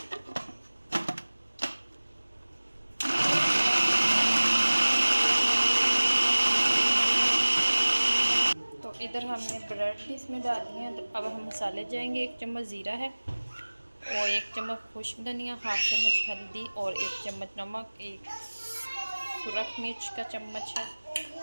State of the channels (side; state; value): both; inverted; correlation -1.00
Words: तो इधर हमने ब्रेड भी इसमें डाली हैं। तो अब हम मसाले जाएंगे। 1 चम्मच ज़ीरा है और 1 चम्मच खुश्क धनिया, हाफ चम्मच हल्दी और 1 चम्मच नमक, 1 सुरख मिर्च का चम्मच है,